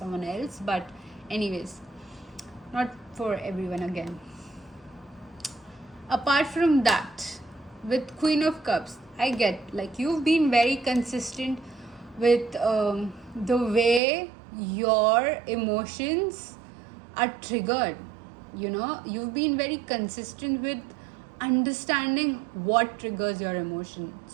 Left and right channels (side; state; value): left; drops out; at 14.0 s